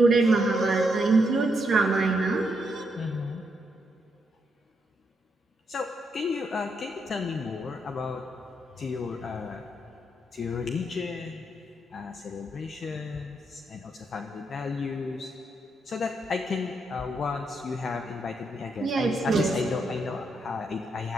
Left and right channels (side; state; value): both; normal; correlation 0.79